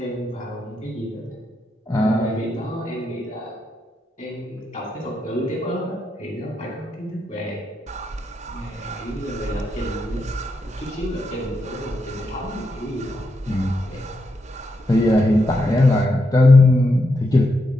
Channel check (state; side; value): normal; both; correlation 0.82